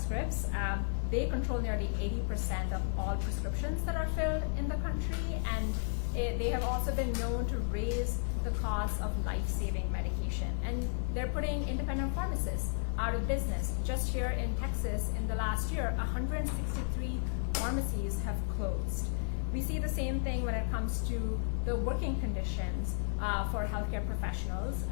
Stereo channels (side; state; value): right; silent; 55 dB below the other